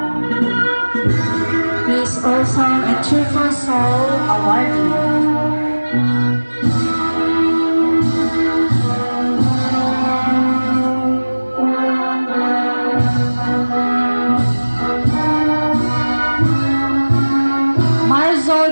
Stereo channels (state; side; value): inverted; both; correlation -1.00